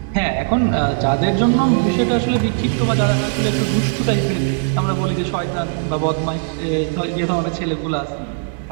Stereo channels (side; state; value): left; silent; 67 dB below the other